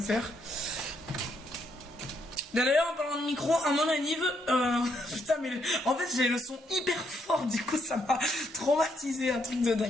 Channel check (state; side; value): normal; both; correlation 0.75